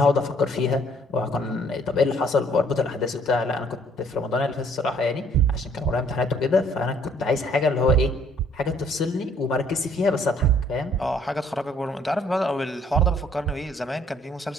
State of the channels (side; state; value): both; normal; correlation 0.61